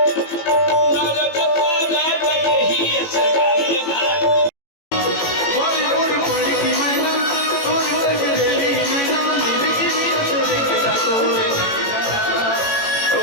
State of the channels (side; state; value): right; late; 18 ms